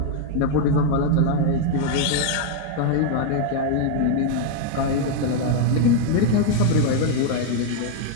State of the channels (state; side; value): different; both; correlation 0.00